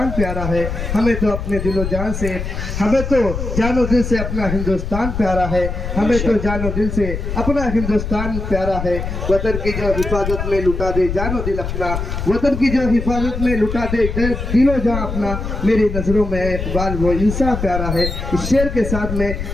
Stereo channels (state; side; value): noise; left; rumble, 5 dB below the sound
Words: پیارا ہے، ہمیں تو اپنے دل و جان سے، ہمیں تو جان و دل سے اپنا ہندوستان پیارا ہے، ہمیں تو جان و دل سے اپنا ہندوستان پیارا ہے، وطن کی جو حفاظت میں لٹا دے جان و دل اپنا، وطن کی جو حفاظت میں لٹا دے دل و جان اپنا، میری نظروں میں اقبال وہ انسان پیارا ہے۔ اس شعر کے ساتھ میں